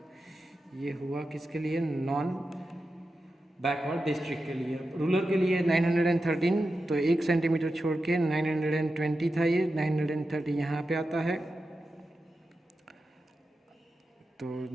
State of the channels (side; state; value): both; normal; correlation 0.91